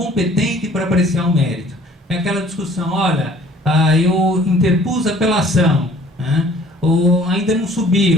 para apreciar o mérito. É aquela discussão, olha, eu interpus apelação, né? Ou ainda não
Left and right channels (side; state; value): both; normal; correlation 0.54